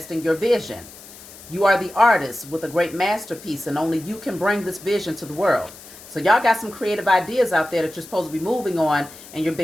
your vision. You are the artist with a great masterpiece, and only you can bring this vision to the world. So y'all got some creative ideas out there that you're supposed to be moving on, and you're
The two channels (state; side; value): noise; left; hiss, 18 dB below the sound